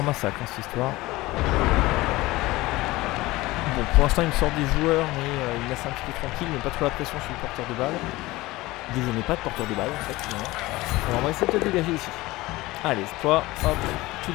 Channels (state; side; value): quieter; right; 19.6 dB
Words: massacre, hein, cette histoire. Bon, pour l'instant, il me sort des joueurs, mais il me laisse un petit peu tranquille. Il met pas trop la pression sur le porteur de balle. Vu que je n'ai pas de porteur de balle, en fait, finalement. Alors, on va essayer de te dégager ici. Allez, toi, hop, tu